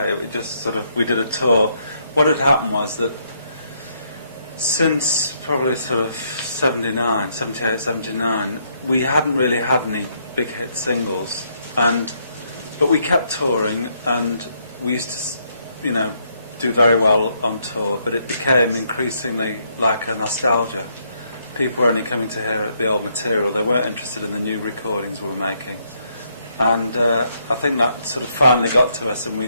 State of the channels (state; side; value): inverted; both; correlation -0.74